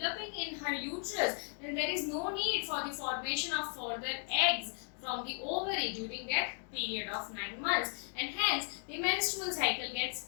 in her uterus, then there is no need for the formation of further eggs from the ovary during that period of 9 months, and hence the menstrual cycle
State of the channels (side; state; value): right; silent; 54 dB below the other